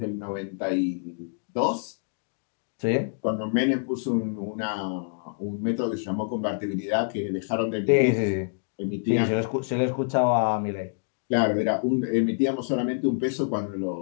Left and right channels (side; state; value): right; silent; digital silence